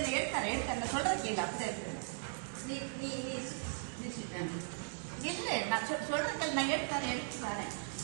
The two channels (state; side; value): silent; left; digital silence